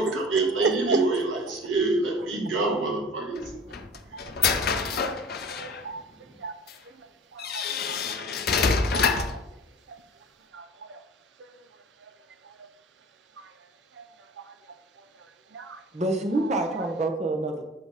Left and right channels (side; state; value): both; normal; correlation 0.41